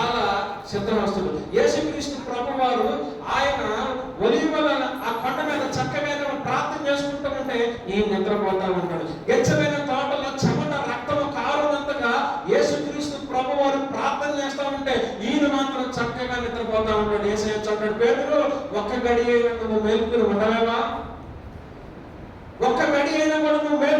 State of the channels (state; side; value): identical; both; correlation 1.00